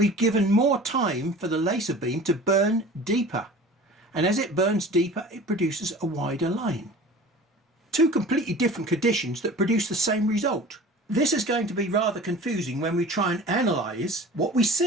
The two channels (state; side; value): normal; both; correlation 0.42